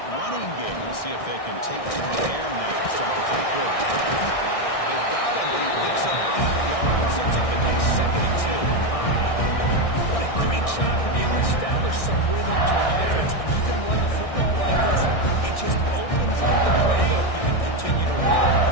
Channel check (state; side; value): late; right; 1.6 ms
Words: running game. We'll see if they can take to the air now to start the third quarter. They've got him, but he picks up 8 yards and sets up a nice 2nd and 2. What a great job to be able to establish some rhythm to an offense. When you can run the football like this, it just opens up the playbook. You can continue to run.